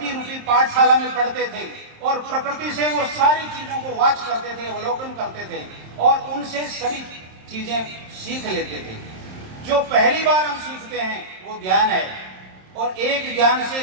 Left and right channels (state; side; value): late; left; 27 ms